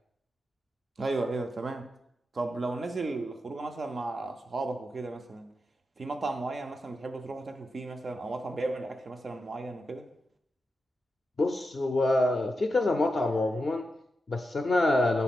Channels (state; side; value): normal; both; correlation 0.88